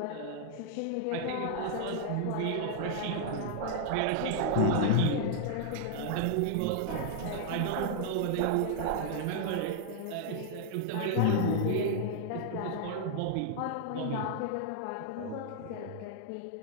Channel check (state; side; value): different; both; correlation -0.01